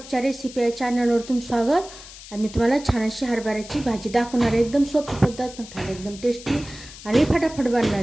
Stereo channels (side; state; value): left; noise; hiss, 16 dB below the sound